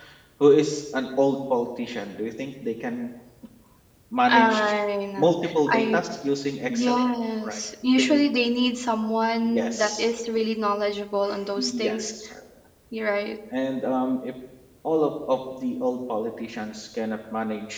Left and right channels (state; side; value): identical; both; correlation 1.00